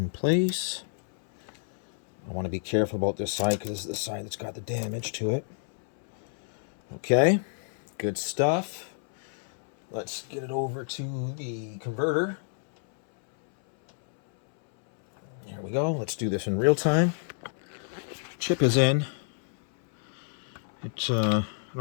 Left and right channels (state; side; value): silent; right; 59 dB below the other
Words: place. I want to be careful about this side because this is the side that's got the damage to it. Okay, good stuff. Let's get it over to the converter. There we go. Let's do this in real time. Chip is in. It